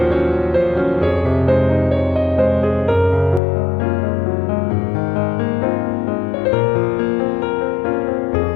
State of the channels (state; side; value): drops out; right; at 3.4 s